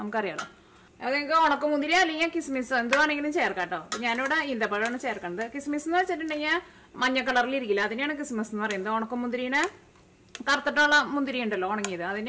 നമുക്കറിയാലോ. അത് നിങ്ങൾക്ക് ഉണക്കമുന്തിരി അല്ലെങ്കിൽ കിസ്മിസ് എന്തുവാണെങ്കിലും ചേർക്കാം കേട്ടോ. ഞാനിവിടെ ഈന്തപ്പഴമാണ് ചേർക്കുന്നത്. കിസ്മിസ് എന്ന് വെച്ചിട്ടുണ്ടെങ്കിൽ മഞ്ഞ കളറിൽ ഇരിക്കില്ല, അതിനെയാണ് കിസ്മിസ് എന്ന് പറയുന്നത്. ഉണക്കമുന്തിരിനെ കറുത്തിട്ടുള്ള മുന്തിരി ഉണ്ടല്ലോ ഉണങ്ങിയത്,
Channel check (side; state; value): both; identical; correlation 1.00